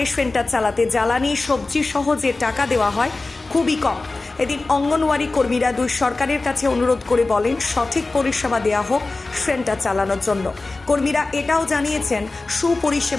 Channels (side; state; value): right; quieter; 3.4 dB